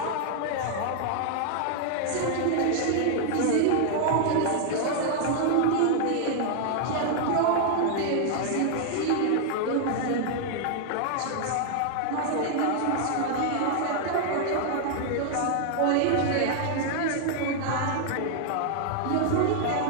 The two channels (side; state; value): both; different; correlation 0.00